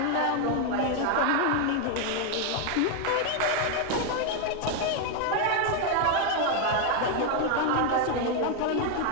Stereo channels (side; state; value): both; different; correlation 0.01